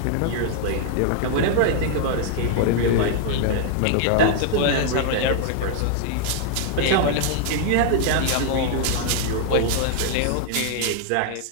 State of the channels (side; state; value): both; different; correlation -0.01